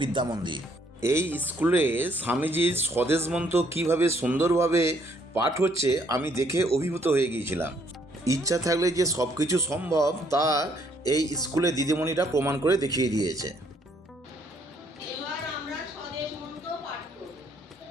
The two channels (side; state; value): both; normal; correlation 0.67